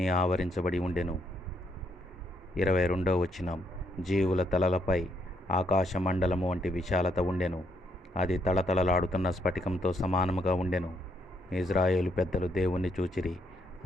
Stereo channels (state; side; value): normal; both; correlation 0.74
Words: ఆవరించబడి ఉండెను. 22వ వచనం. జీవుల తలలపై ఆకాశ మండలము వంటి విశాలత ఉండెను. అది తళతళలాడుతున్న స్ఫటికంతో సమానముగా ఉండెను. ఇజ్రాయేలు పెద్దలు దేవుణ్ణి చూచిరి.